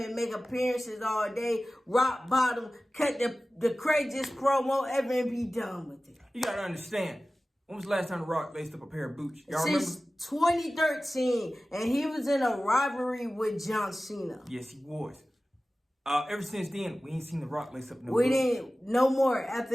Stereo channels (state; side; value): normal; both; correlation 0.96